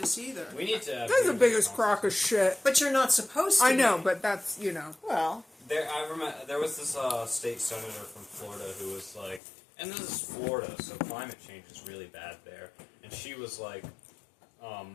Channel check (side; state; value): right; drops out; at 9.4 s